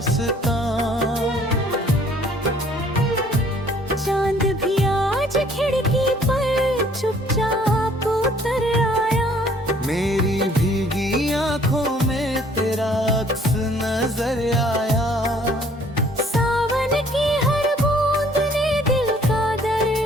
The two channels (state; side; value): normal; both; correlation 0.59